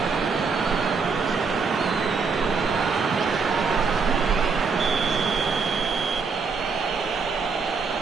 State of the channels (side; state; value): left; quieter; 5.0 dB